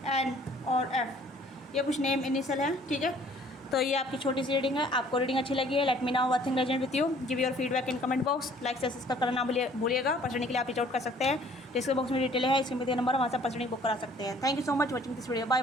एन और एफ, ये कुछ नेम इनिशियल है, ठीक है। तो ये आपकी छोटी सी रीडिंग है। आपको रीडिंग अच्छी लगी है, let me now what thing resonate with you, give your feedback in comment box, like से सब्सक्राइब करना भूलिएगा। पर्सनली के लिए आप रीच आउट कर सकते हैं, डिस्क्रिप्शन बॉक्स में डिटेल है, इसमें दिया नंबर वहाँ से पर्सनली बुक करा सकते हैं। Thank you so much watching this video, bye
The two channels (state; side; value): normal; both; correlation 0.56